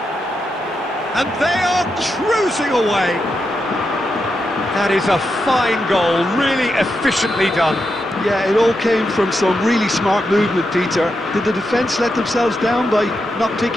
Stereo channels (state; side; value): normal; both; correlation 0.86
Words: And they are cruising away. That is a fine goal, really efficiently done. Yeah, it all came from some really smart movement, Peter. Did the defence let themselves down by not